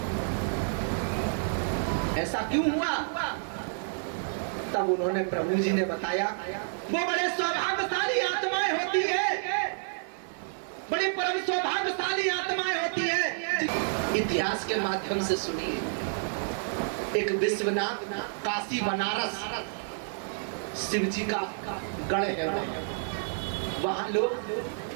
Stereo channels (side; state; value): left; silent; digital silence